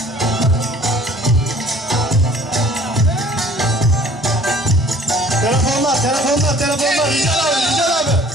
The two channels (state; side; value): normal; both; correlation 0.52